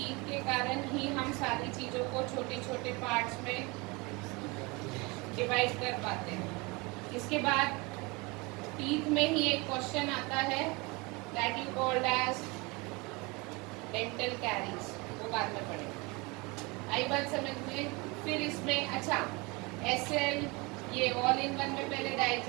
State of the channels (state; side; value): quieter; left; 26.3 dB